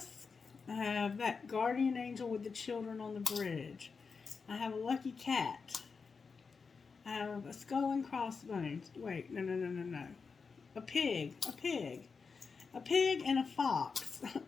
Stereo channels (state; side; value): quieter; right; 5.1 dB